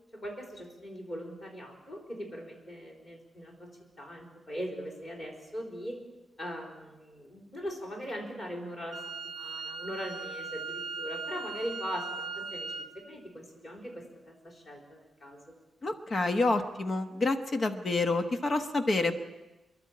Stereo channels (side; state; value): both; normal; correlation 0.83